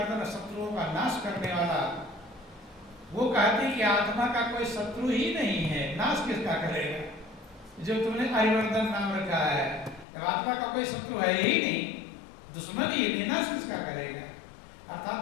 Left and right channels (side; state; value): right; drops out; at 10.1 s